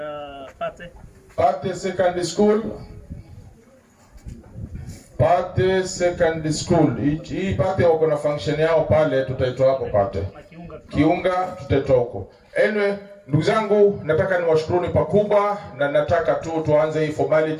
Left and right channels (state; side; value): identical; both; correlation 1.00